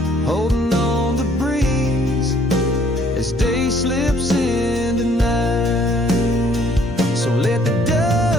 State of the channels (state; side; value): normal; both; correlation 0.62